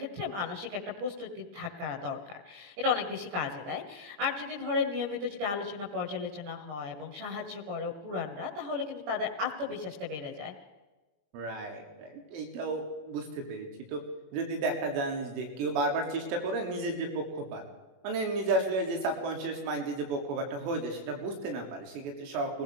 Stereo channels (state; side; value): late; left; 21 ms